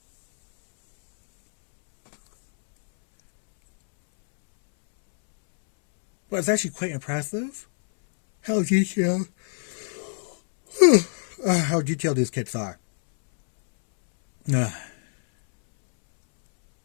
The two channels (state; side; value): silent; right; 63 dB below the other